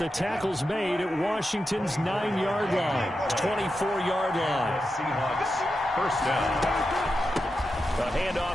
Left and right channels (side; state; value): both; normal; correlation 0.89